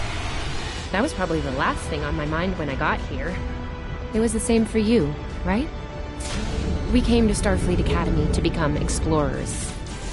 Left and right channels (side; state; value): both; identical; correlation 1.00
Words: That was probably the last thing on my mind when I got here. It was the same for you, right? We came to Starfleet Academy to become explorers.